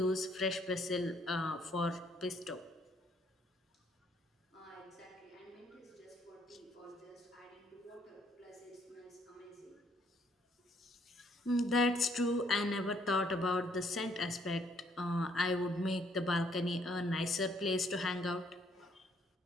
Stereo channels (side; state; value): both; normal; correlation 0.67